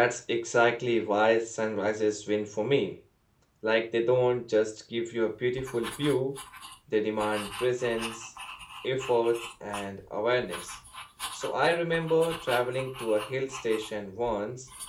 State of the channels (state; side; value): identical; both; correlation 1.00